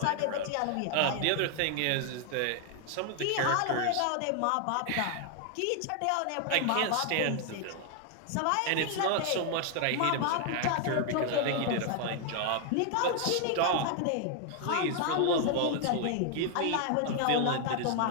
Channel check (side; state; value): both; different; correlation 0.00